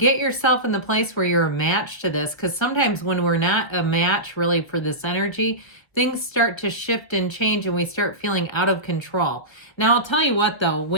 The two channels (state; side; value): late; right; 1.5 ms